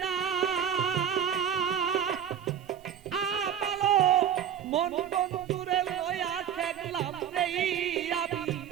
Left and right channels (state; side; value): quieter; left; 8.9 dB